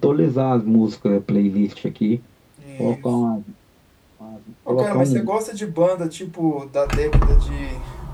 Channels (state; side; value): identical; both; correlation 1.00